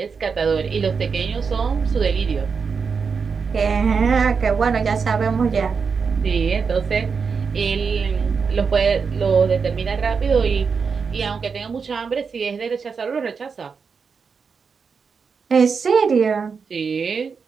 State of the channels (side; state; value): left; quieter; 5.6 dB